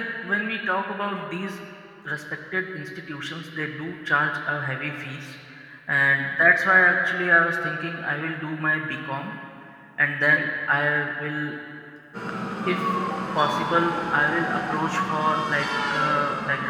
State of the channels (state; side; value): identical; both; correlation 1.00